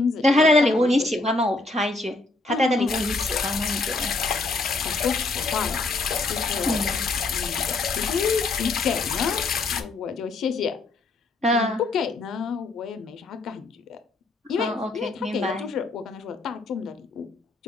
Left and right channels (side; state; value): right; quieter; 3.2 dB